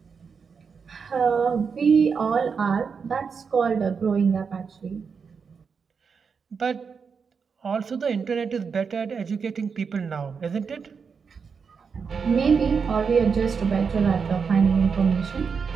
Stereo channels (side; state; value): left; quieter; 5.8 dB